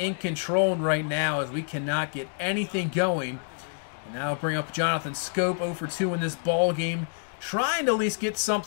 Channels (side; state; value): right; silent; 60 dB below the other